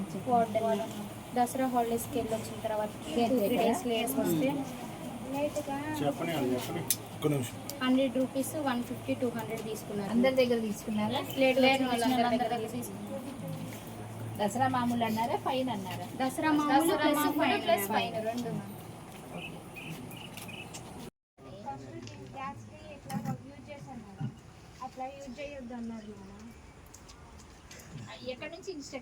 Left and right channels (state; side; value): identical; both; correlation 1.00